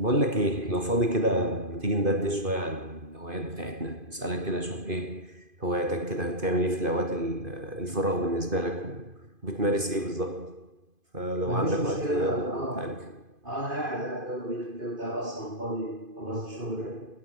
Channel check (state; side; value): late; left; 2.5 ms